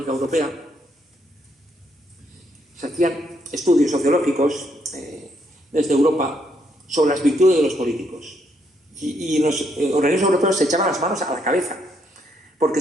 Europea, se hacían estudios sociológicos desde Europa sobre las virtudes de los políticos. Y los organismos europeos se echaban las manos a la cabeza, porque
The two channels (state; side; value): normal; both; correlation 0.74